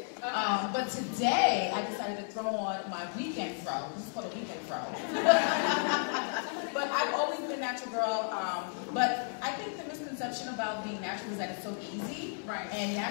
But today, I decided to throw on my weekend fro. This is called a weekend fro. But I've always been a natural girl. But I think the misconception about being natural is that it's so easy. Right. And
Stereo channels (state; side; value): silent; right; 56 dB below the other